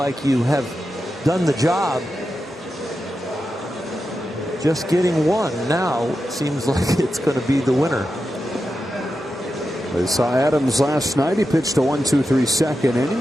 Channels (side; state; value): both; normal; correlation 0.90